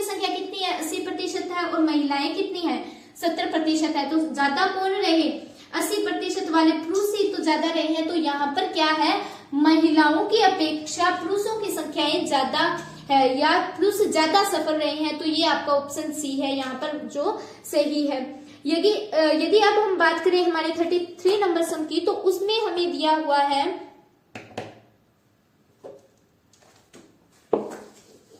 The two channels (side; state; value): both; identical; correlation 1.00